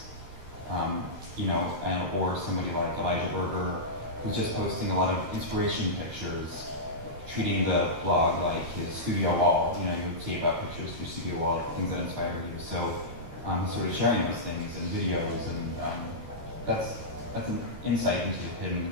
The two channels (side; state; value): left; late; 13 ms